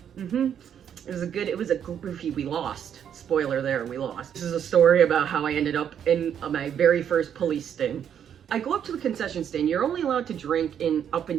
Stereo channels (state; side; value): quieter; left; 8.8 dB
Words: It was a goofy, we lost. Spoiler there, we lost. This is a story about how I ended up in my very first police sting. I go up to the concession stand. You're only allowed to drink in up